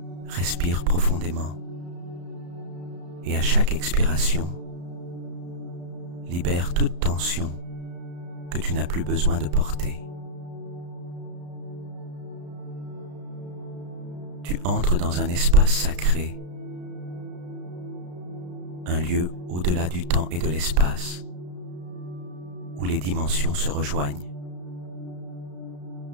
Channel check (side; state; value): left; late; 34 ms